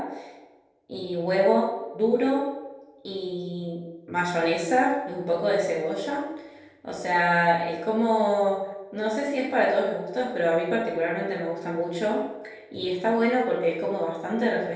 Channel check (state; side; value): identical; both; correlation 1.00